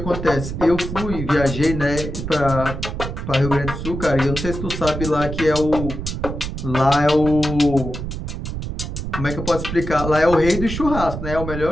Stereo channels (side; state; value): right; noise; rumble, 6 dB below the sound